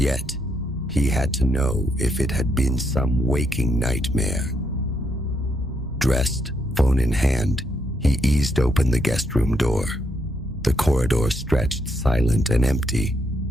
he had to know if it had been some waking nightmare. Dressed, phone in hand, he eased open the guest room door. The corridor stretched silent and empty,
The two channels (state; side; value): normal; both; correlation 0.76